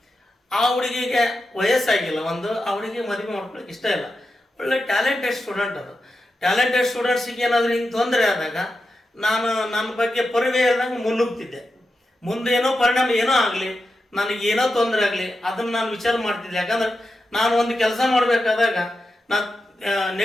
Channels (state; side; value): normal; both; correlation 0.90